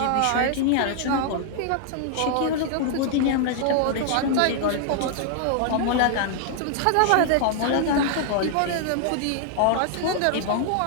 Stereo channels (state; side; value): different; both; correlation 0.00